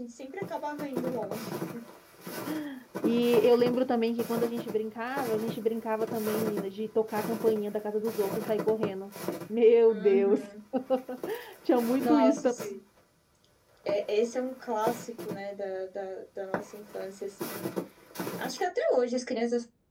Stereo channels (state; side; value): identical; both; correlation 1.00